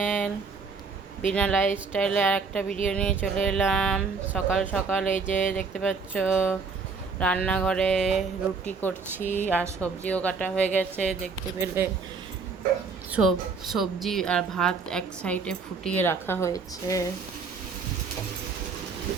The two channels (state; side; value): quieter; left; 4.8 dB